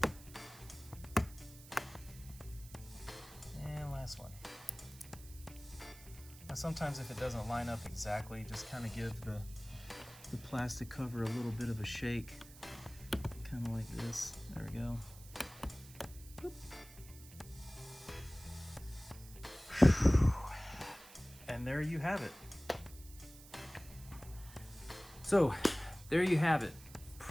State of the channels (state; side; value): noise; right; hiss, 18 dB below the sound